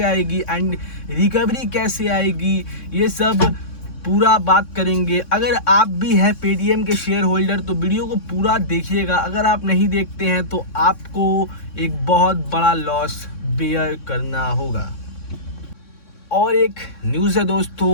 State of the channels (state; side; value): late; right; 3.6 ms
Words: आएगी, एंड रिकवरी कैसे आएगी, ये सब पूरा बात करेंगे। अगर आप भी हैं पेटीएम के शेयर होल्डर तो वीडियो को पूरा देखिएगा। अगर आप नहीं देखते हैं तो आपको एक बहुत बड़ा लॉस बेयर करना होगा। और एक न्यूज़ है